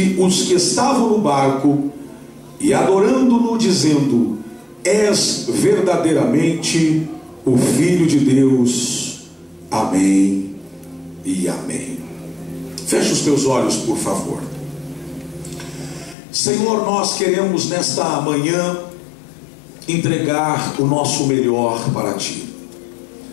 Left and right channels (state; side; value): drops out; right; at 16.2 s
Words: os que estavam no barco, e adorando-no, dizendo: és verdadeiramente o Filho de Deus. Amém e amém. Feche os teus olhos, por favor. Senhor, nós queremos nesta manhã entregar o nosso melhor para Ti.